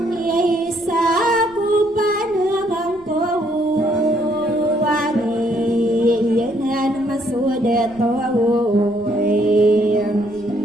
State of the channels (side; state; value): left; noise; rumble, 25 dB below the sound